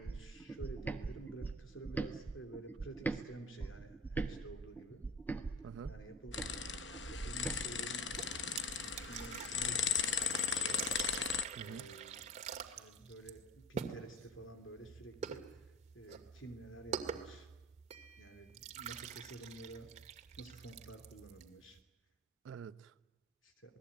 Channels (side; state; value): both; normal; correlation 0.32